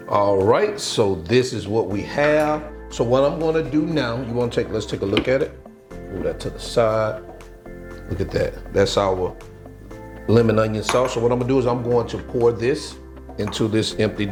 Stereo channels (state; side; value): identical; both; correlation 1.00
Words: All right, so this is what we have. So what I'm gonna do now, let's take a look at it. Move that to the side. Look at that. That's our lemon onion sauce. So what I'm gonna do is I'm going to pour this into this empty